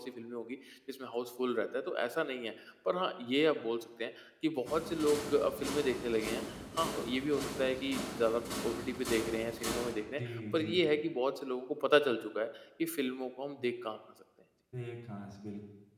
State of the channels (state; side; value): identical; both; correlation 1.00